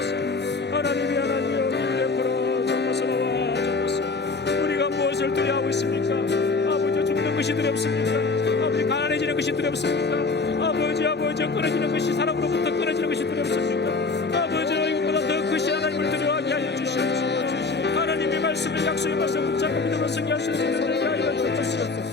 하나님이 하나님이여 우리 옆으로 주옵소서. 주옵소서. 우리가 무엇을 두려워하고 있습니까? 아버지, 죽는 것이 두렵습니까? 아버지, 가난해지는 것이 두렵습니까? 아버지 끊어지는 것이, 사람으로부터 끊어지는 것이 두렵습니까? 아버지, 이것보다 더 크신 하나님을 두려워하게 하여 주시옵소서. 하나님의 말씀을, 약속의 말씀을 붙잡고 믿음으로 승리할 수 있는 것을 하여 주옵소서.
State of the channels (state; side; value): quieter; right; 4.0 dB